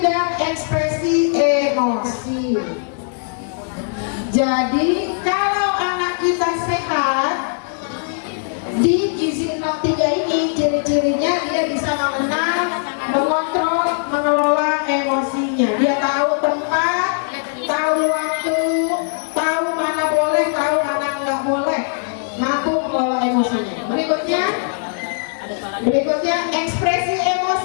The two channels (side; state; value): right; silent; digital silence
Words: ekspresi emosi. Jadi kalau anak kita sehat, di gizi 03 ini ciri-cirinya dia bisa mengenal, mengontrol, mengelola emosinya. Dia tahu tempat, tahu waktu, tahu mana boleh, tahu mana nggak boleh, mampu mengelola emosinya. Berikutnya ekspresi